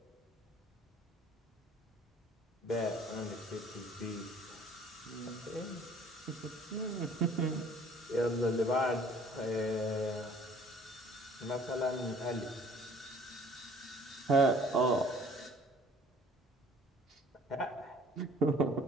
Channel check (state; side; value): normal; both; correlation 0.53